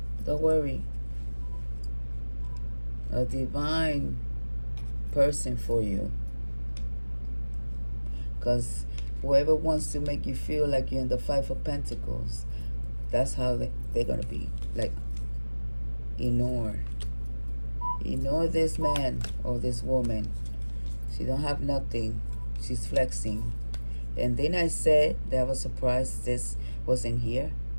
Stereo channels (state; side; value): inverted; both; correlation -1.00